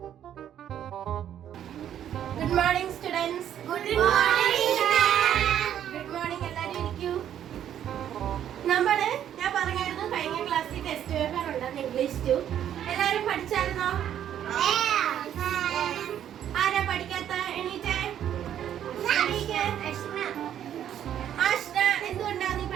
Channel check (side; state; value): left; quieter; 10.3 dB